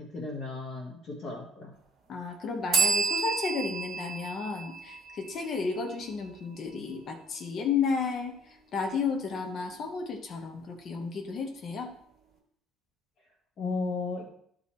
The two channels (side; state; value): both; normal; correlation 0.58